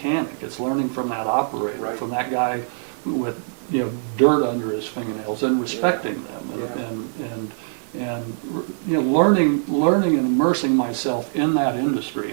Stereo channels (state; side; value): silent; left; digital silence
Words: It's learning from that operator, Right. from that guy with dirt under his fingernails, and respecting them, and learning and immersing myself in that